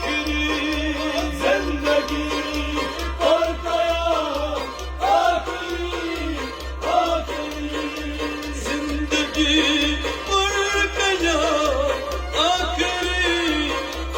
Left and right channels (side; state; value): both; identical; correlation 1.00